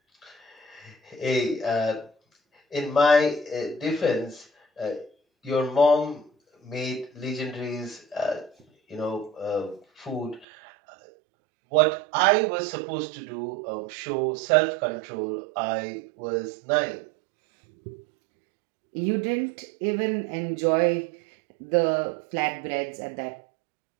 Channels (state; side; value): drops out; left; at 10.5 s